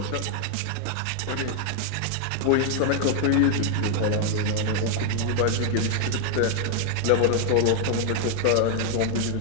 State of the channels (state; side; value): different; both; correlation 0.00